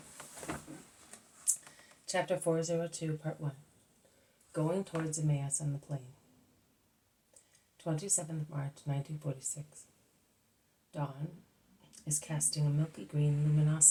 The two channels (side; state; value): both; identical; correlation 1.00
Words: Chapter 402, Part 1, Going Towards Emmaus on the Plain. 27th March, 1946. Dawn is casting a milky green